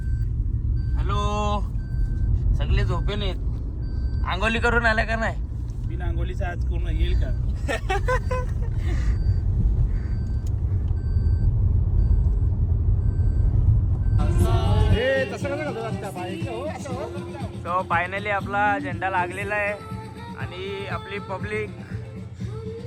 हॅलो, सगळे झोपेन आहेत. आंघोळी करून आल्या का नाही? बिना आंघोळीचा आज कोण येईल का? सो फायनली आपला झेंडा लागलेला आहे आणि आपली पब्लिक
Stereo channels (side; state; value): both; identical; correlation 1.00